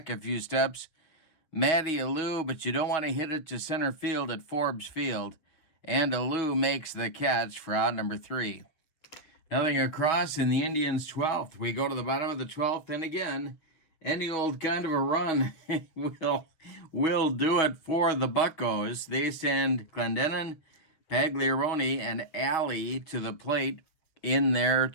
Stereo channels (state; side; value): late; right; 7.1 ms